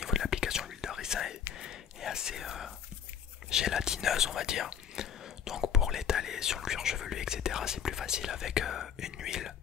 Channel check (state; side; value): quieter; right; 8.4 dB